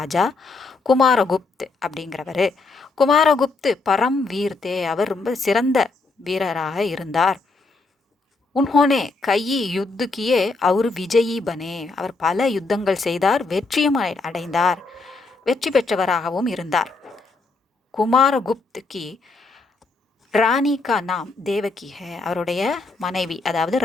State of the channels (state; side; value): quieter; right; 3.7 dB